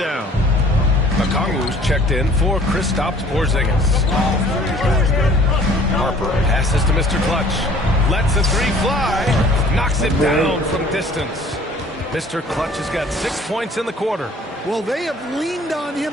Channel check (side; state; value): both; normal; correlation 0.53